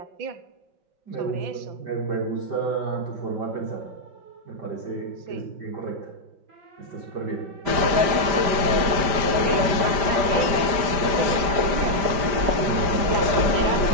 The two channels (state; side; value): late; left; 5.1 ms